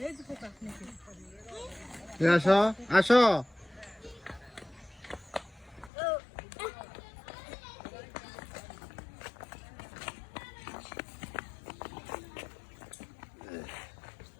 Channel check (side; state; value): right; drops out; at 5.9 s